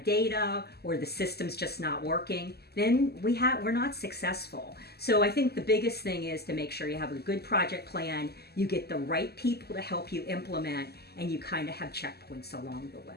data or the system's just not working, then we're not successful. So I think the biggest thing is to make sure you have a good project plan, you get the right people to help you implement, and you kind of have checkpoints along the way.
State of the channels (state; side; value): late; right; 0.46 ms